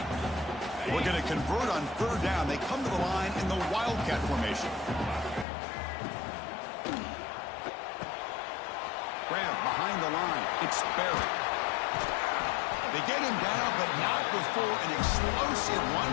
We're going to convert on third down. They come to the line in the Wildcat formation. Grab behind the line. It's Barry. They get him down, but not before an explosive run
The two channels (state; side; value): drops out; right; at 5.5 s